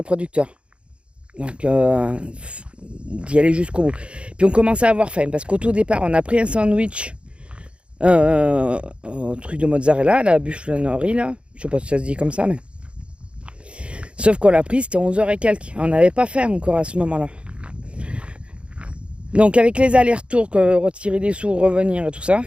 producteurs. Donc, d'y aller jusqu'au bout. Puis on commençait à avoir faim. Parce qu'au tout départ, on a pris un sandwich truc de mozzarella, la buffleterie, là. Je sais pas si ça se dit comme ça, mais... Sauf qu'on l'a pris, c'était 11h et quelques. On n'avait pas faim encore à ce moment-là. Donc avec les allers-retours, retirer des sous, revenir et tout ça,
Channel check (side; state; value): left; late; 0.058 ms